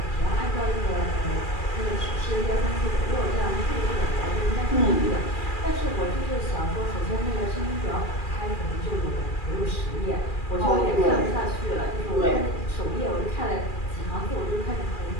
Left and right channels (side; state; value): right; late; 2.4 ms